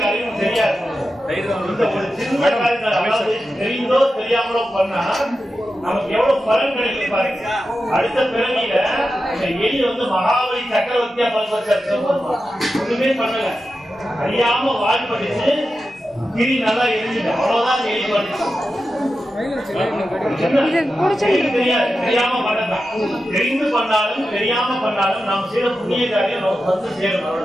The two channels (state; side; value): normal; both; correlation 0.91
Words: காரியம் தெரியாது. ஒரு சின்ன காரியத்தை அதாவது தெரிந்தோ தெரியாமலோ பண்ணா நமக்கு எவ்வளவு பலன் கிடைக்கும் பாருங்க. அடுத்த பிறவியில இந்த எலி வந்து மகாபலி சக்கரவர்த்தியா ஒண்ணுமே பண்ணல, அறியாம வால் படிச்சு கிரி நல்லா எரிஞ்சுட்டு அவ்வளவுதான் எலி பண்ணிச்சு. தெரியாம பண்ணதான். தெரிந்து பண்ணாலும் தெரியாம பண்ணாலும் நாம் செய்த புண்ணிய காரியம் நமக்கு வந்து சேரும்.